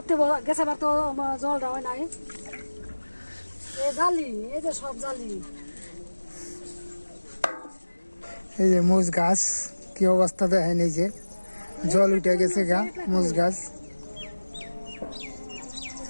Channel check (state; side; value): inverted; both; correlation -1.00